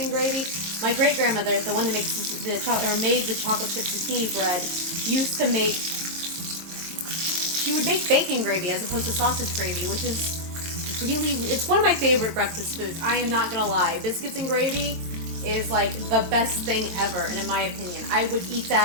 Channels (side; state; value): left; late; 23 ms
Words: gravy. My great grandmother, the one that makes made the chocolate chip zucchini bread, used to make. She would make bacon gravy as opposed to sausage gravy, which is really, it's one of my favorite breakfast foods. I am not gonna lie, biscuits and gravy is like the best thing ever, and in my opinion, I would eat